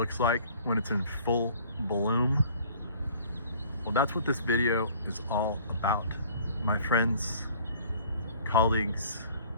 like when it's in full bloom? Well, that's what this video is all about. My friends, colleagues,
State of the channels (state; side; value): inverted; both; correlation -0.52